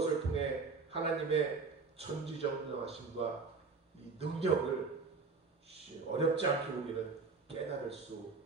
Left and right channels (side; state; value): left; quieter; 4.5 dB